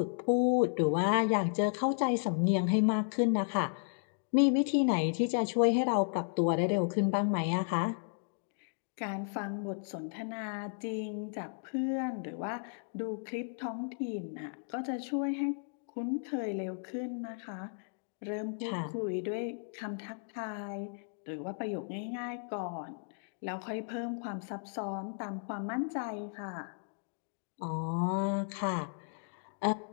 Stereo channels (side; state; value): right; silent; digital silence